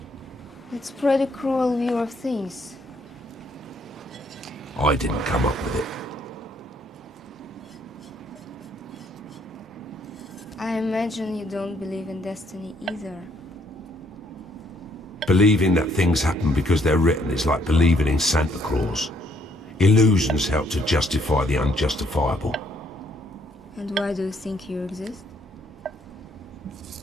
It's a pretty cruel view of things. I didn't come up with it. I imagine you don't believe in destiny either. Believing that things happen because they're written is like believing in Santa Claus. Illusions help to justify the unjustifiable. And why do you think you exist?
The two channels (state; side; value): normal; both; correlation 0.68